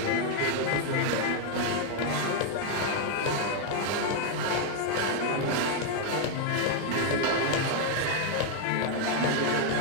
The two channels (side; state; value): both; different; correlation 0.01